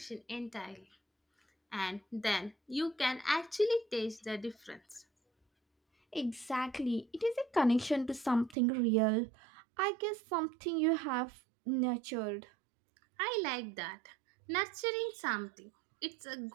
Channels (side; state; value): left; drops out; at 8.6 s